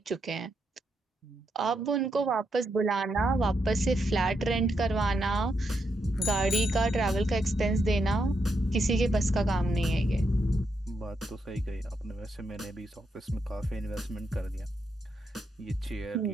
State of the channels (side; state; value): both; normal; correlation 0.81